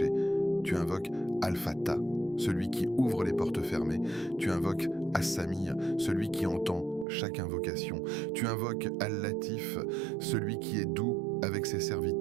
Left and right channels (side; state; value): left; drops out; at 7.1 s